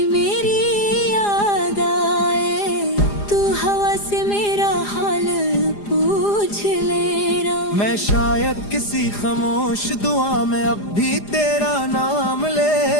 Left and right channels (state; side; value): late; right; 4.9 ms